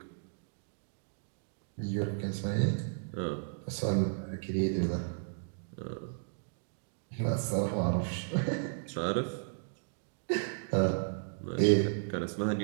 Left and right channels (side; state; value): left; silent; digital silence